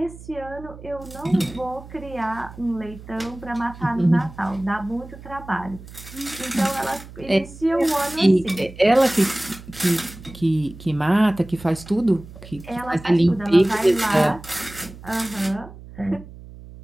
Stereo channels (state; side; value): noise; right; hum, 17 dB below the sound